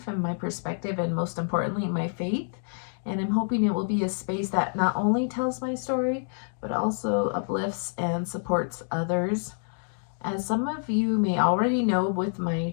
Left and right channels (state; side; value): silent; right; digital silence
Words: and my perspective, and most importantly, my faith. And I'm hoping it will be a space that not only tells my story, but also uplifts and supports others. As some of you may already know with my